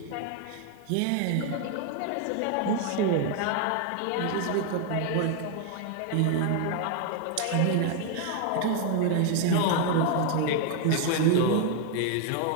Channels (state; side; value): different; both; correlation 0.01